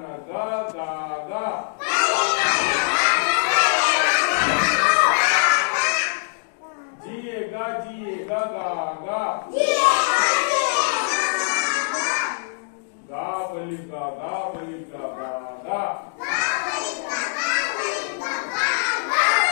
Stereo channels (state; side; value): silent; right; digital silence